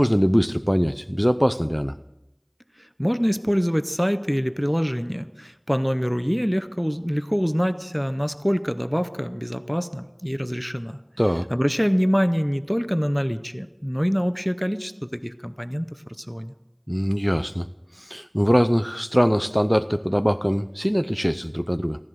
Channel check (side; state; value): both; identical; correlation 1.00